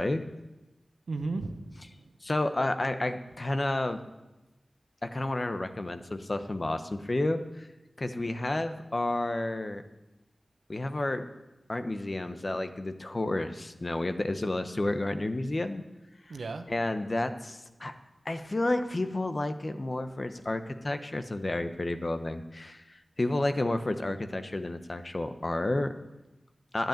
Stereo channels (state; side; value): normal; both; correlation 0.98